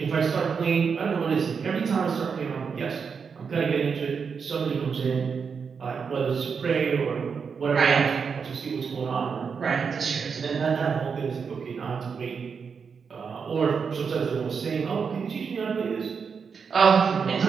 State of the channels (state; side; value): quieter; left; 6.0 dB